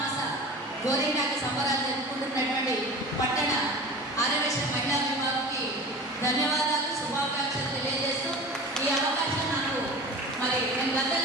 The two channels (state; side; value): normal; both; correlation 0.36